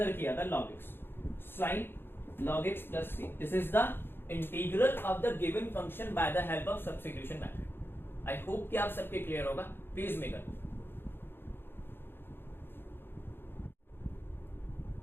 किया था, log x, sin log x plus c। This is the integral of the given function by the help of substitution method. I hope कि आप सबके क्लियर होगा। प्लीज मेकर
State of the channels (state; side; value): late; right; 0.10 ms